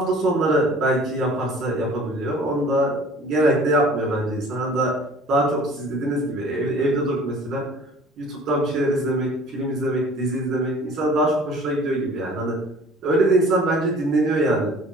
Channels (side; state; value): both; normal; correlation 0.49